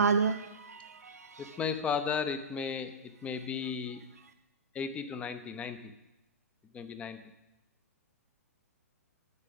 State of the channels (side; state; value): both; normal; correlation -0.08